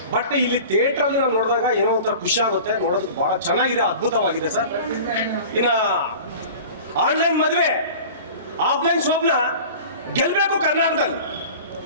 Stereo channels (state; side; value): inverted; both; correlation -0.39